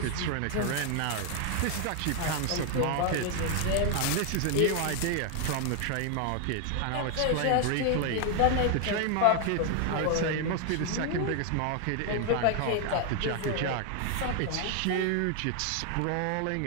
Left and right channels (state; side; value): different; both; correlation 0.00